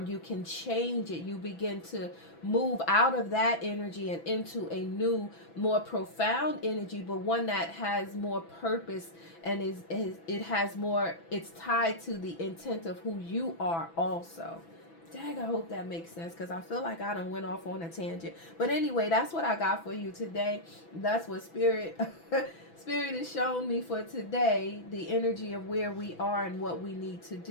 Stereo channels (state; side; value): late; right; 6.0 ms